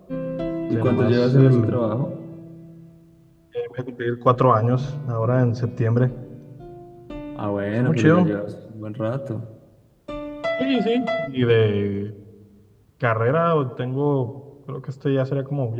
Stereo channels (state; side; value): identical; both; correlation 1.00